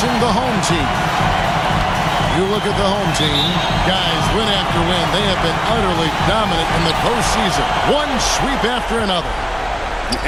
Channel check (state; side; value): identical; both; correlation 1.00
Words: the home team. You look at the home team, guys, win after win, they have been utterly dominant in the postseason. One sweep after another.